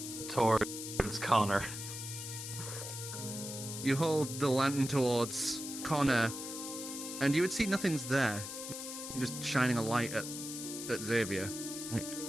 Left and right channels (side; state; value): left; noise; hiss, 7 dB below the sound